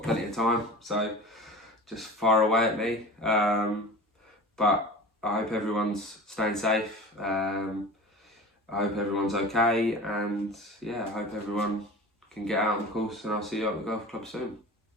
plenty of time, so just fire away at me. But I hope everyone's staying safe. I hope everyone's okay, and I hope everyone can get out on the course, and I'll see you at the golf club soon.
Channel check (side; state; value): both; normal; correlation 0.36